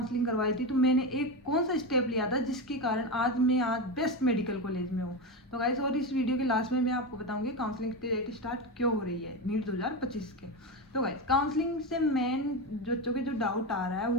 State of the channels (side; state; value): both; normal; correlation 0.16